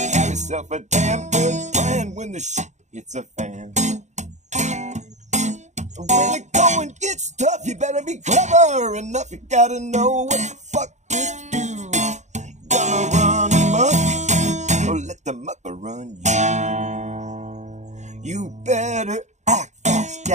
have yourself a damn good plan when the shit hits a fan. When the going gets tough, you better be clever enough. You gotta know what the fuck to do. Gonna run amok, or let the mucker run you. You better act fast,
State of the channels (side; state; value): left; late; 0.34 ms